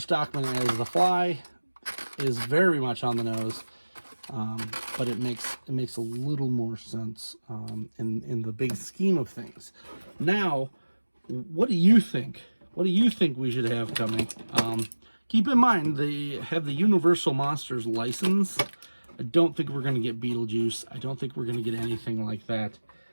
as the Fly is very much on the nose. but it makes a little more sense in the big scheme of things. Now, what do you think? What do you think we should have coming? Keep in mind, they have the Universal Monsters license. I don't think we're going to get Beetlejuice. I don't think we're going to get anything like that.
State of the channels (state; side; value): inverted; both; correlation -1.00